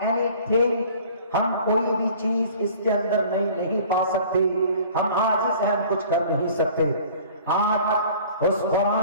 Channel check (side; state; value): both; inverted; correlation -0.48